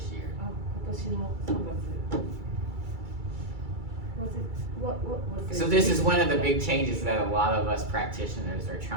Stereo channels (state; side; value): late; left; 2.3 ms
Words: year. あ今年の3月。Was it what was it? So this is one of the big changes that a lot of us practitioners are